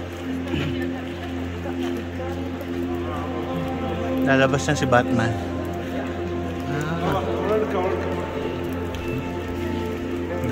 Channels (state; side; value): identical; both; correlation 1.00